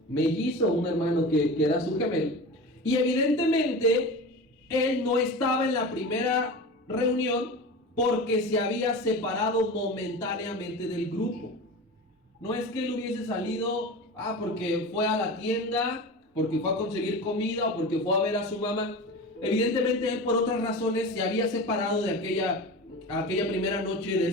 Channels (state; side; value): normal; both; correlation 0.30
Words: mellizo, un hermano que era su gemelo. Y evidentemente él no estaba en la primera reunión porque se había separado momentáneamente del grupo. No es que él hubiese salido porque fue a la tienda, porque fue a conseguir comida o porque fue a ver a su mamá. Evidentemente él, por otras razones, se había separado de aquella primera noche de